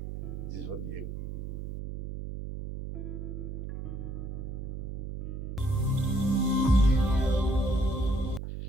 जिस वक्त ये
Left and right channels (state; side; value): noise; right; hum, 6 dB below the sound